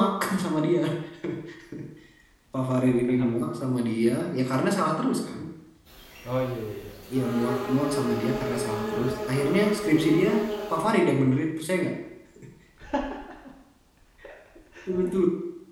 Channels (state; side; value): identical; both; correlation 1.00